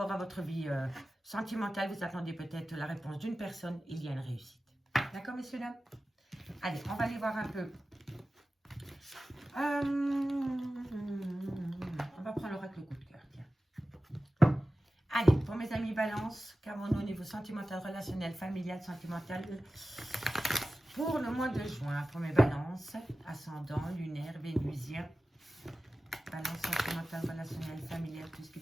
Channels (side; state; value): both; normal; correlation 0.95